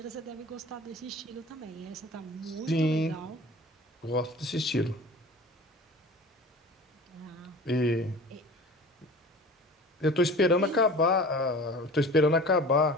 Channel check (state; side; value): normal; both; correlation 0.40